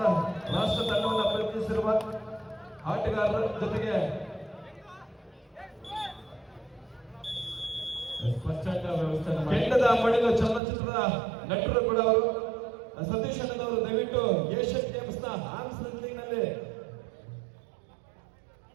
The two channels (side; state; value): left; drops out; at 10.6 s